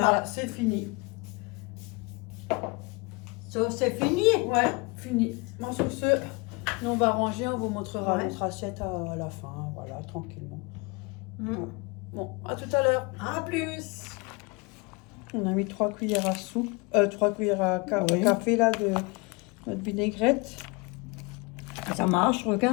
Voilà, c'est fini. Ça, c'est fini. Ouais, fini. Bon, sur ce, nous on va ranger, on vous montrera Ouais. notre assiette à la fin, voilà, tranquillement. Mm. Bon, à tout à l'heure. À plus. On a mis 3 cuillères à soupe, 3 cuillères à Oui. café là de notre vinaigrette. Ça marche,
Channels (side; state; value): right; quieter; 28.2 dB